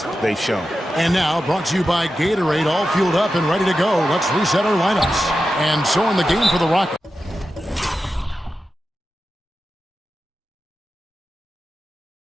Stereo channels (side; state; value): both; normal; correlation 0.91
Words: they've shown. And now, brought to you by Gatorade, all fueled up and ready to go. Let's reset our lineups. And so in the game for the Rockets.